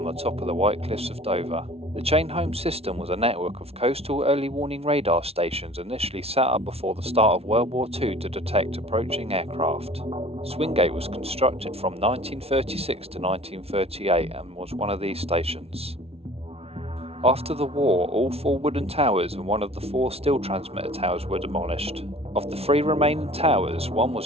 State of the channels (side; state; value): left; late; 0.30 ms